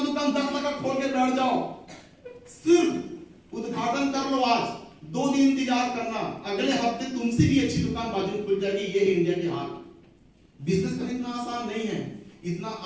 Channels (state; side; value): identical; both; correlation 1.00